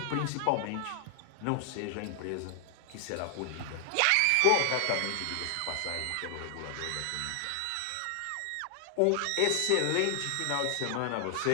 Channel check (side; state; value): both; different; correlation 0.00